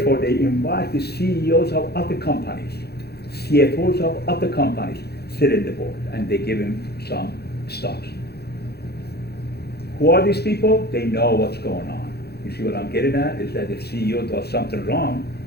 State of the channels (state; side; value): late; right; 0.47 ms